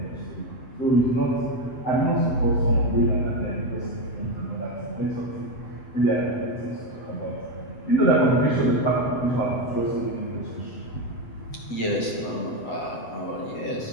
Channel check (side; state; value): right; late; 8.0 ms